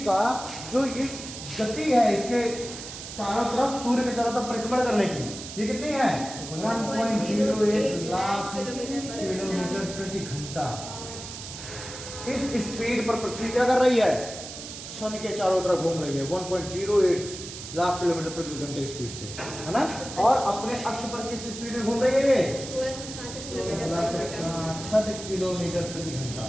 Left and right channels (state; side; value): noise; right; hiss, 10 dB below the sound